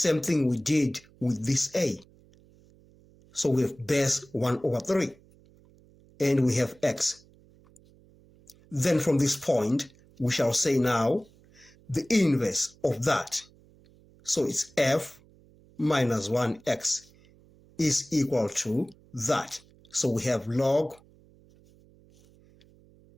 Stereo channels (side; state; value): right; noise; hum, 28 dB below the sound